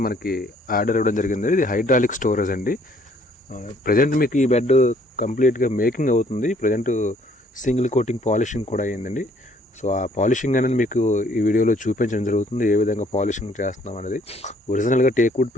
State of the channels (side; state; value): both; normal; correlation 0.62